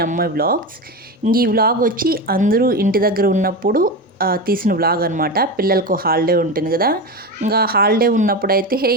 అమ్మాయి వ్లాగ్స్. ఈ వ్లాగ్ వచ్చి అందరూ ఇంటి దగ్గర ఉన్నప్పుడు తీసిన వ్లాగ్ అనమాట. పిల్లలకు హాలిడే ఉంటుంది కదా, ఇంకా హాలిడే ఉన్నప్పుడైతే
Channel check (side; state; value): both; normal; correlation 0.20